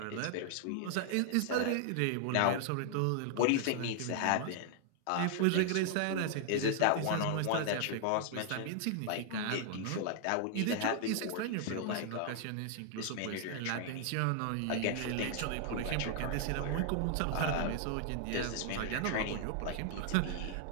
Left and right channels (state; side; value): different; both; correlation 0.00